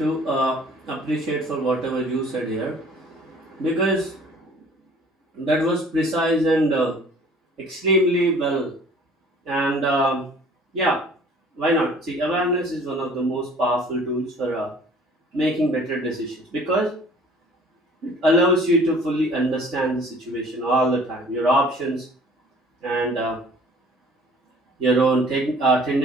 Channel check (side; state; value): both; normal; correlation 0.51